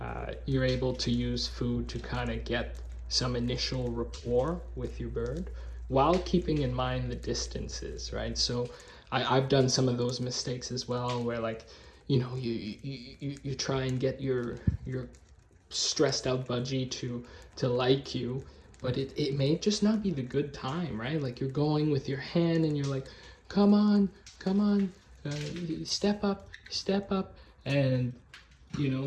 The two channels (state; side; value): identical; both; correlation 1.00